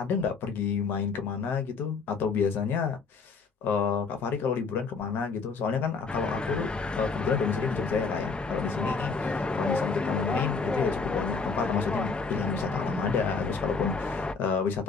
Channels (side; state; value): right; quieter; 4.8 dB